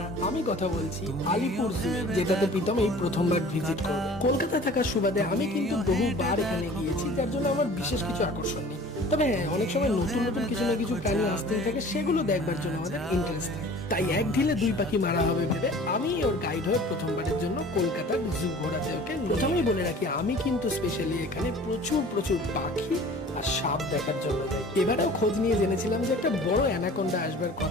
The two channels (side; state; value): both; normal; correlation 0.45